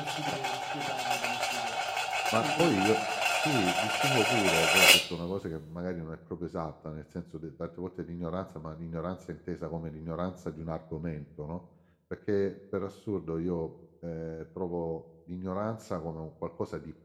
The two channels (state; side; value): identical; both; correlation 1.00